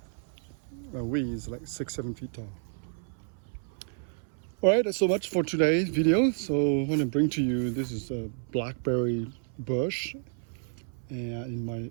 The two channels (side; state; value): left; silent; 58 dB below the other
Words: weed is like 6, 7 feet tall. All right, that's so much for today's video. So I want to bring to you, this is a Blackberry Bush at